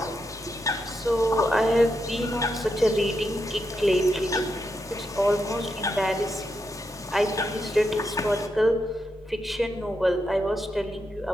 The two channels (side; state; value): both; normal; correlation 0.84